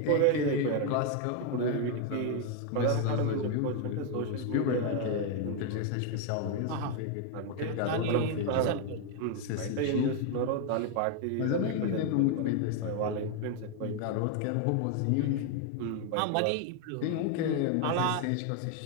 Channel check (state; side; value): different; both; correlation 0.01